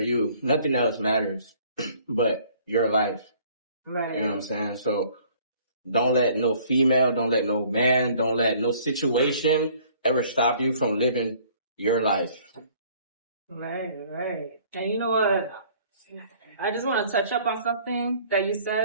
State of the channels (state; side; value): inverted; both; correlation -0.56